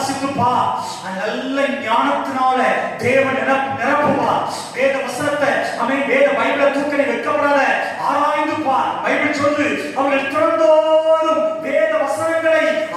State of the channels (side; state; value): both; identical; correlation 1.00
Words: நல்ல ஞானத்தினால தேவன் நிரப்புவா. வேத வசனத்தை வேத பைபிளை தூக்க நீ வைக்கப்படாத, ஆராய்ந்து பார். பைபிள் சொல்லு, அவர்கள் திறந்தோறும் வேத வசனங்களை